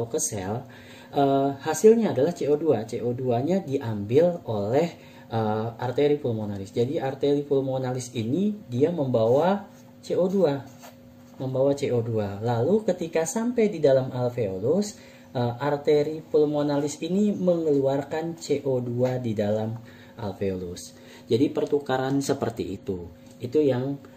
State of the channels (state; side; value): identical; both; correlation 1.00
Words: ke sel, hasilnya adalah CO2. CO2-nya diambil oleh arteri pulmonalis. Jadi arteri pulmonalis ini dia membawa CO2. Lalu ketika sampai di dalam alveolus, arteri pulmonalis ini mengeluarkan CO2 di dalam alveolus. Jadi pertukaran seperti itu. Itu yang